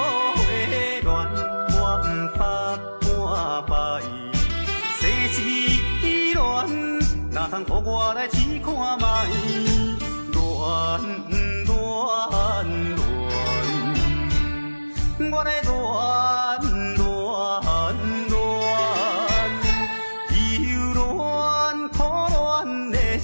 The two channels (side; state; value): both; inverted; correlation -1.00